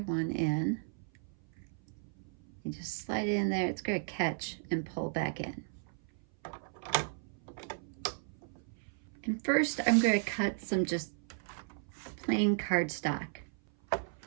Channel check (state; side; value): silent; left; 54 dB below the other